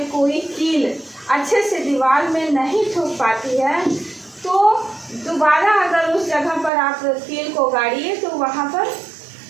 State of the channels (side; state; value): left; drops out; at 6.7 s